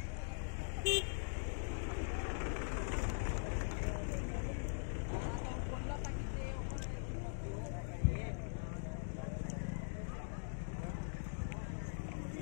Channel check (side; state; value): right; silent; digital silence